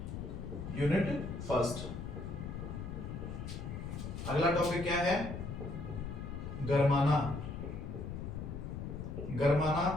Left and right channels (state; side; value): noise; left; rumble, 6 dB below the sound